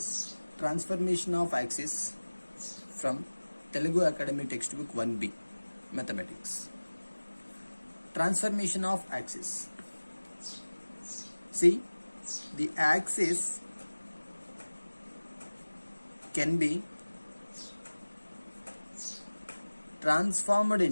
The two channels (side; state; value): both; inverted; correlation -1.00